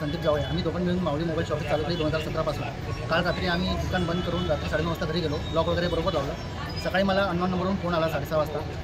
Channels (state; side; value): identical; both; correlation 1.00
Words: संदीप जावळे आम्ही दोघं मिळून माऊली मोबाईल शॉप चालू केली 2017 पासून। काल रात्री आम्ही दुकान बंद करून रात्री 9:30 वाजता घरी गेलो, लॉक वगैरे बरोबर लावलं। सकाळी मला अननोन नंबरवरून फोन आला 6:30 वाजता।